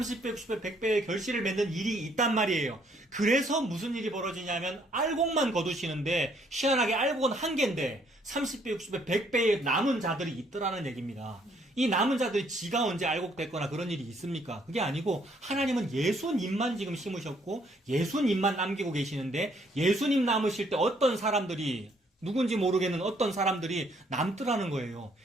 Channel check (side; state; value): both; normal; correlation 0.67